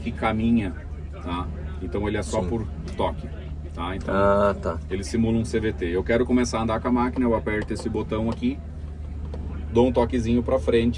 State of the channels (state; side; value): identical; both; correlation 1.00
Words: caminha, tá? Então ele é só por toque, tá? Então ele simula um CVT. Eu quero começar a andar com a máquina, eu aperto esse botão aqui, dou um toquezinho para